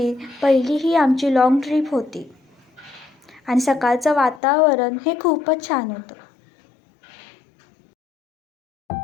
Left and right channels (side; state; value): right; drops out; at 4.4 s